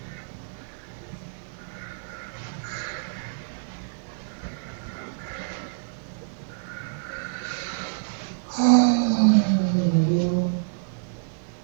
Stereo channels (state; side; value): silent; left; digital silence